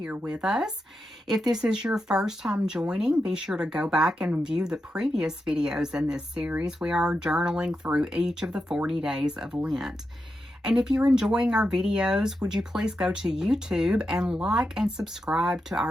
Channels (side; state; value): both; normal; correlation 0.87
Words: with us. If this is your first time joining, be sure to go back and view the previous videos in this series. We are journaling through each of the 40 days of Lent. And if you're enjoying our videos, would you please go to YouTube and like and subscribe to